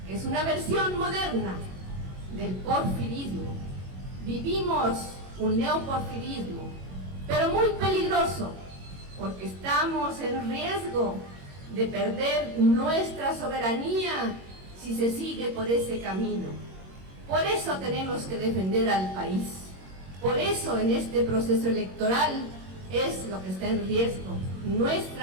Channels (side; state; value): left; late; 21 ms